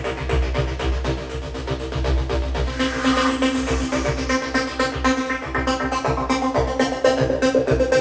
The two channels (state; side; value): identical; both; correlation 1.00